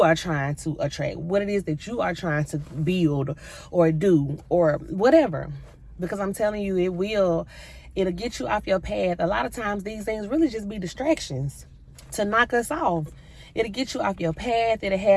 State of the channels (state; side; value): identical; both; correlation 1.00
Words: are trying to attract, what it is that you are trying to build or do or whatever. Because I'm telling you, it'll get you off your path. A lot of times these things really just be distractions to knock us off. It'll get you off your path. It'll